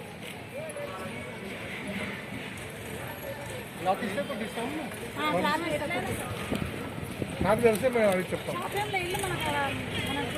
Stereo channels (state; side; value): identical; both; correlation 1.00